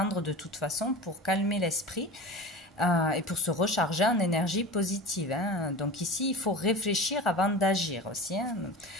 de toute façon pour calmer l'esprit. Et pour se recharger en énergie positive, hein. Donc ici, il faut réfléchir avant d'agir aussi, hein.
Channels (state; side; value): normal; both; correlation 0.33